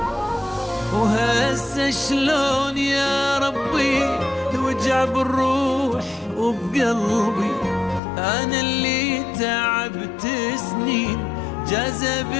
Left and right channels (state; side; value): drops out; right; at 8.0 s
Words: وهسه شلون يا ربي الوجع بالروح وبقلبي، أنا اللي تعبت سنين جذب